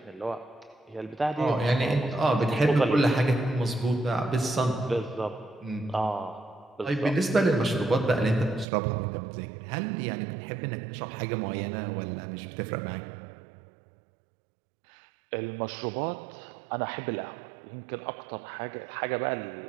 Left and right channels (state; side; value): drops out; left; at 8.7 s